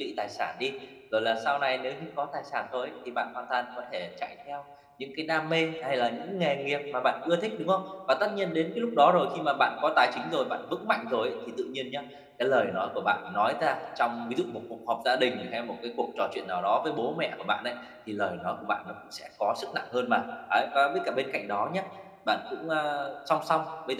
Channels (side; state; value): both; identical; correlation 1.00